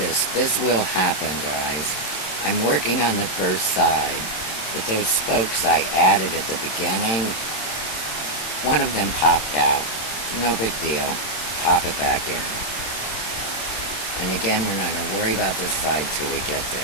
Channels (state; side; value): late; right; 27 ms